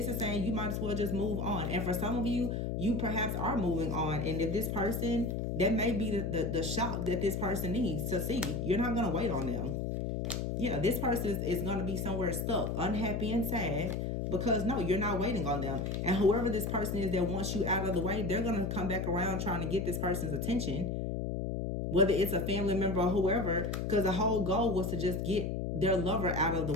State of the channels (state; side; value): noise; left; hum, 1 dB below the sound